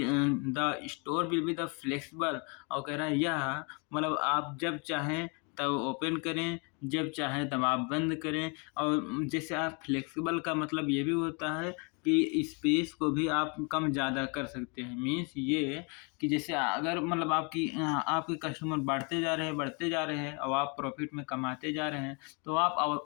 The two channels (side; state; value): right; quieter; 33.8 dB